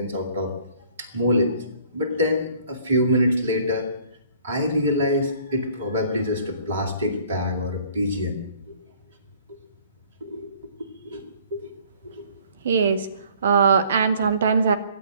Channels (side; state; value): both; inverted; correlation -0.57